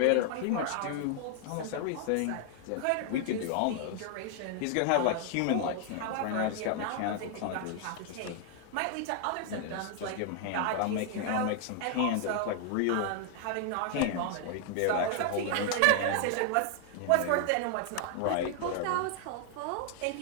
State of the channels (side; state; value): both; different; correlation 0.00